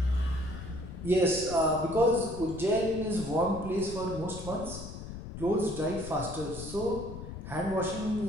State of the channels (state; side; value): noise; left; rumble, 10 dB below the sound